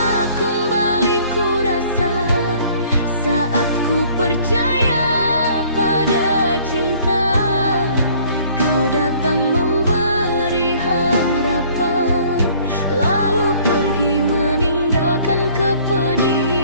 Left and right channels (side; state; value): both; inverted; correlation -0.56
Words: kembali ku rasa saat ku percaya pada cinta. Kau datang memberi harapan, lalu pergi meninggalkan